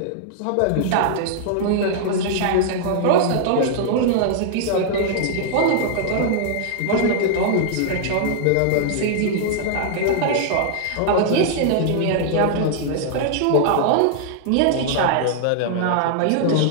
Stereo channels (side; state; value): both; different; correlation -0.01